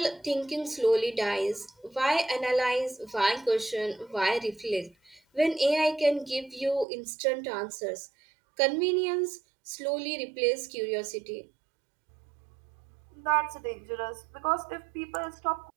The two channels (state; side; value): drops out; left; at 6.9 s